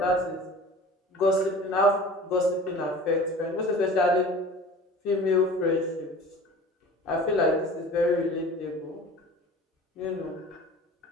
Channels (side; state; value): both; normal; correlation 0.41